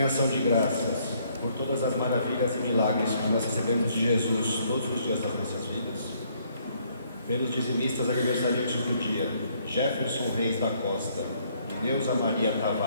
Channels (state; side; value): inverted; both; correlation -0.67